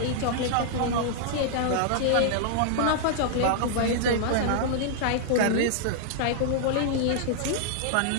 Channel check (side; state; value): both; different; correlation -0.01